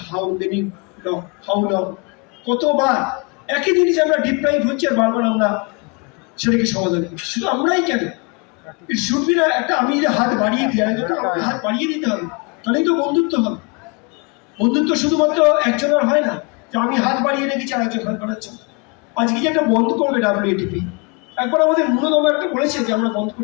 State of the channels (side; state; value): right; quieter; 30.3 dB